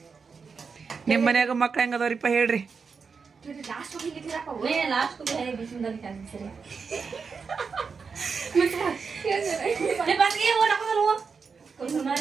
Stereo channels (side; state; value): left; quieter; 5.4 dB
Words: ನಿಮ್ಮ ಮನ್ಯಾಗ ಮಕ್ಳು ಹೆಂಗದವ್ರಿಪ್ಪ ಹೇಳ್ರಿ ಲಾಸ್ಟ್ ಹೋಗಿದ್ದೀರಪ್ಪ ಲಾಸ್ಟ್ ಬಿಸಿಂದ ಸರಿ